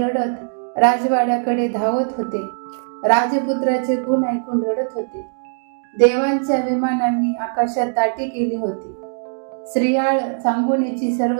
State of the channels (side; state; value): left; silent; digital silence